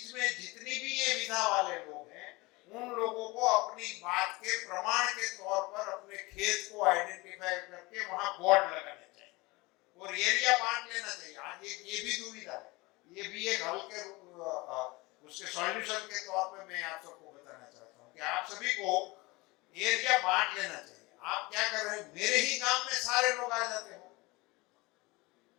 में जितनी भी ये विधा वाले लोग हैं उन लोगों को अपनी बात के प्रमाण के तौर पर अपने खेत को आइडेंटिफाई करके वहां बोर्ड लगाने चाहिए और एरिया बांट लेना चाहिए। आज ये भी दुविधा है, ये भी एक हल के उसके सॉल्यूशन के तौर पे मैं आप सबको बताना चाहता हूँ कि आप सभी को एरिया बांट लेना चाहिए। आप क्या कर रहे हैं, मेरे ही गांव में सारे लोग आ जाते हो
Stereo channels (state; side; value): quieter; right; 23.3 dB